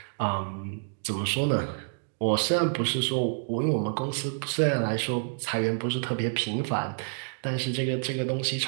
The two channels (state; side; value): silent; left; digital silence